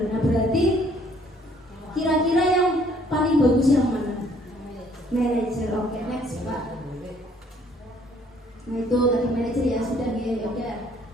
Nah berarti kira-kira yang paling bagus yang mana? Manajer. Oke, next Pak. Nah itu tadi manajer ya sudah ya udah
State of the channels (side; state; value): both; normal; correlation 0.62